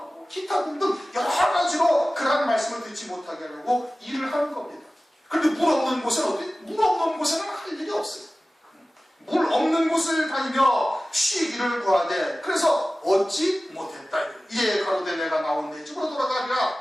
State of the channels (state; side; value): normal; both; correlation 0.96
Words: 기타 등등 여러 가지로 그러한 말씀을 듣지 못하게 하려고 일을 하는 겁니다. 그런데 물 없는 곳은 어디? 물 없는 곳에는 할 일이 없어요. 물 없는 곳을 다니며 쉬기를 구하되, 그래서 얻지 못했다. 이에 가로되 내가 나온 내 집으로 돌아가리라